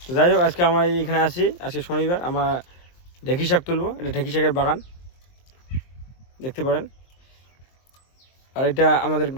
তো যাই হোক, আজকে আমরা এইখানে আছি, আজকে শনিবার, আমরা ঢেঁকি শাক তুলবো। এটা ঢেঁকি শাকের বাগান দেখতে পারেন। আর এটা আমাদের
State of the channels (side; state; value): right; late; 23 ms